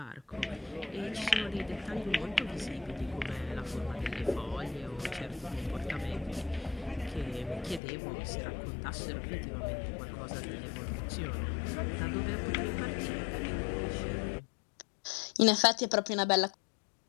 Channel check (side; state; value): right; drops out; at 7.8 s